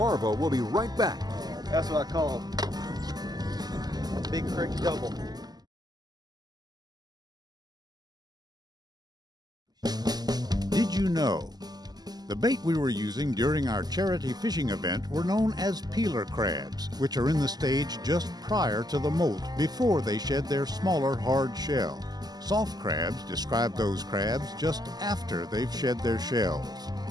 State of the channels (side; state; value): left; late; 0.20 ms